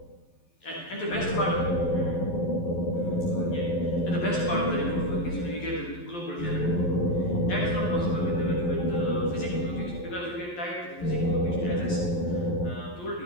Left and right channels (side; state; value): right; late; 11 ms